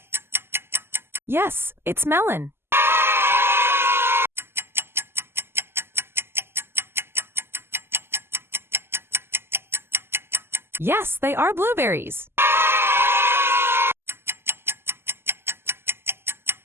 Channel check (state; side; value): late; left; 0.12 ms